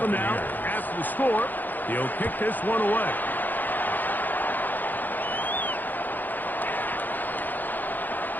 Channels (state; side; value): late; right; 0.086 ms